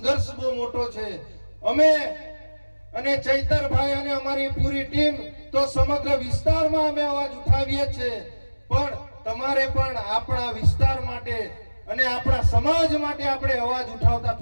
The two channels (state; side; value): inverted; both; correlation -1.00